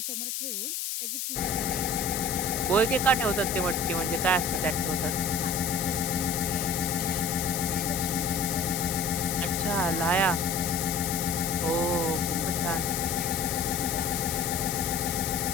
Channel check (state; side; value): noise; left; hiss, 2 dB below the sound